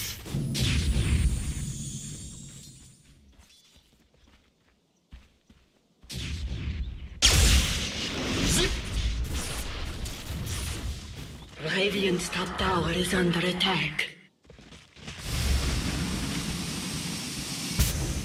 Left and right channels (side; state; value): both; identical; correlation 1.00